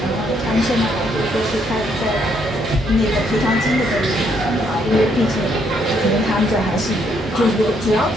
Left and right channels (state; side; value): normal; both; correlation 0.72